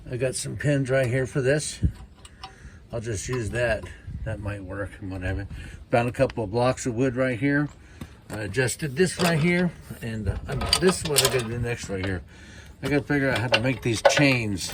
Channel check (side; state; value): both; identical; correlation 1.00